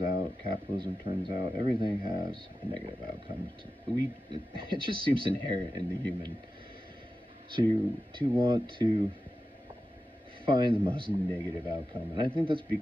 out, capitalism turns out. Everything has a negative outcome. It just seems inherent in the human to want to find the most negative outcome. And I think that's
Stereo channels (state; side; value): normal; both; correlation 0.93